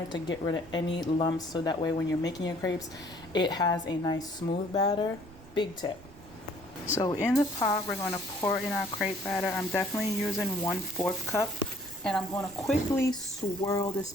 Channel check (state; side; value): noise; right; rumble, 20 dB below the sound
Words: to get rid of any lumps, so that way when you're making your crepes, it has a nice smooth batter. Big tip. So in the pot, we're going to pour in our crepe batter. I'm definitely using 1/4 cup, and I'm going to quickly swirl this